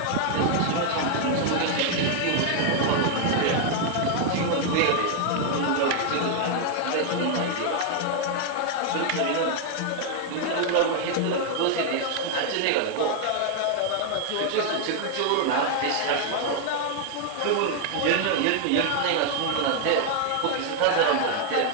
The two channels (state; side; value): different; both; correlation 0.00